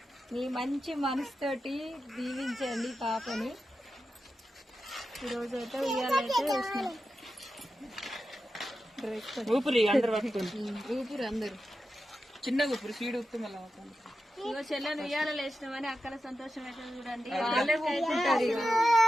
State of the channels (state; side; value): normal; both; correlation 0.90